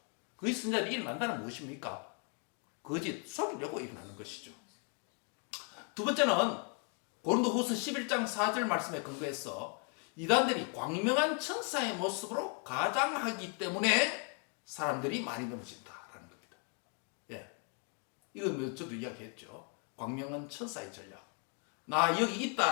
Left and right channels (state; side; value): quieter; right; 38.3 dB